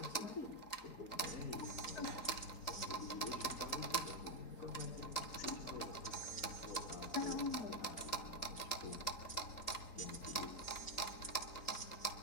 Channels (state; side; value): late; right; 3.9 ms